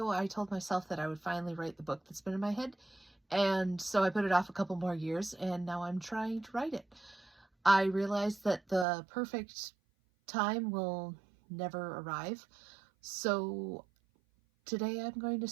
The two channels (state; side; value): drops out; left; at 8.8 s